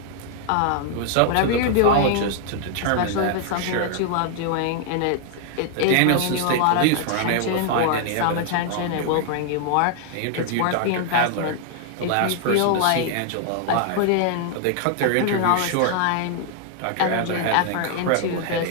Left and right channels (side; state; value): both; different; correlation 0.00